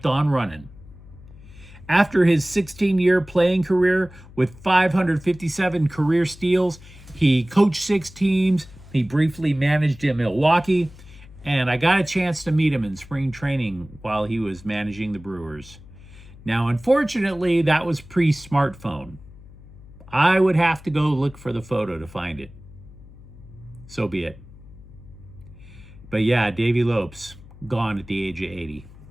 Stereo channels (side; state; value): left; noise; hum, 20 dB below the sound